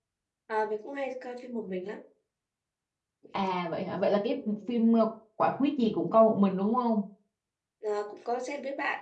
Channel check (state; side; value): identical; both; correlation 1.00